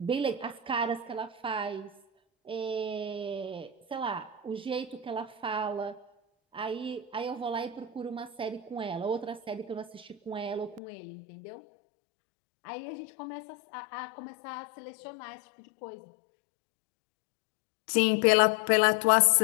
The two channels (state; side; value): drops out; right; at 10.8 s